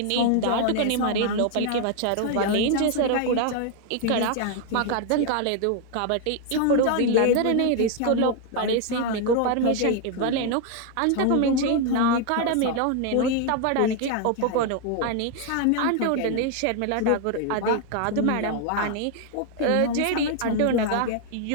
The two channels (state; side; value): different; both; correlation 0.00